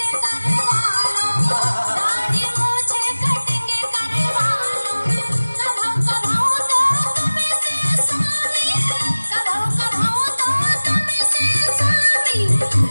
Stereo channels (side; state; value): both; inverted; correlation -1.00